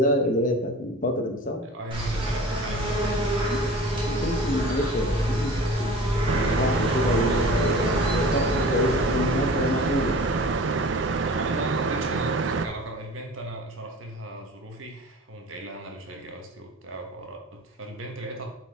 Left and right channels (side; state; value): both; normal; correlation 0.41